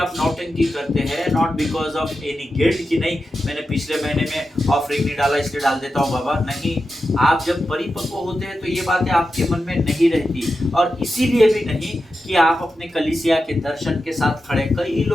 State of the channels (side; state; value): both; normal; correlation 0.90